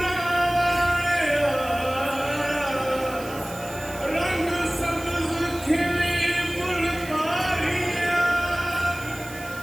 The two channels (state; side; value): noise; right; hiss, 16 dB below the sound